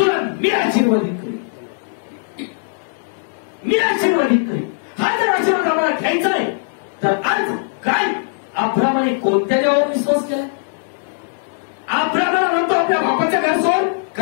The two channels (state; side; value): silent; right; digital silence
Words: मी आशीर्वादित करीन. हा जर आशीर्वाद आम्हाला घ्यायचा आहे तर आज काय अब्रामाने कोणत्या देवावर विश्वास केला? अब्रामाला म्हणतो आपल्या बापाचं घर सोड.